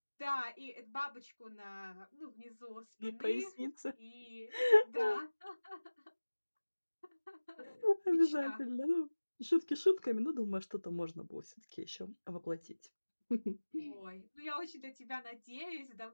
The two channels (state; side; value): inverted; both; correlation -1.00